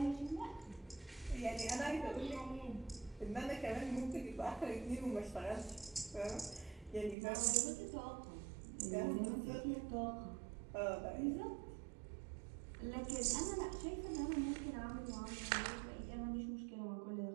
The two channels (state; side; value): drops out; left; at 7.2 s